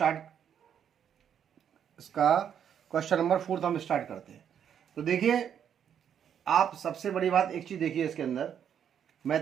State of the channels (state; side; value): quieter; left; 8.7 dB